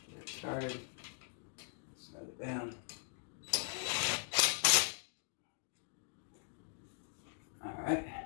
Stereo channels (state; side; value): silent; right; digital silence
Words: Get it started. Snug it down. Alright,